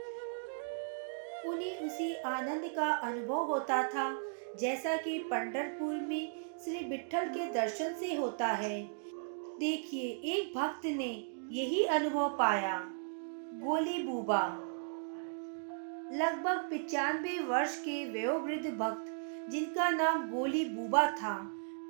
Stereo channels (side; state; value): left; silent; digital silence